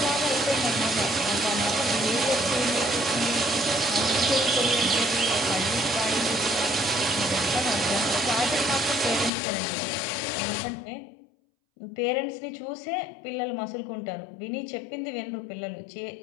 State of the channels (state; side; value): drops out; right; at 9.3 s